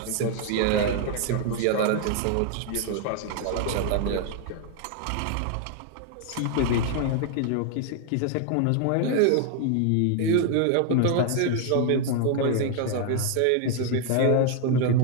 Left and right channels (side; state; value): both; different; correlation 0.00